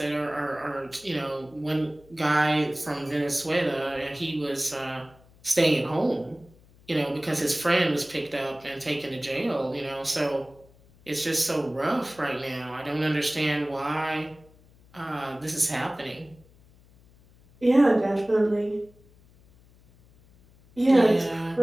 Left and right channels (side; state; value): left; noise; hum, 27 dB below the sound